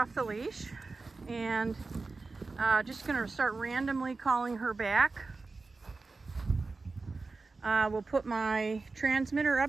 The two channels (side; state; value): left; quieter; 3.8 dB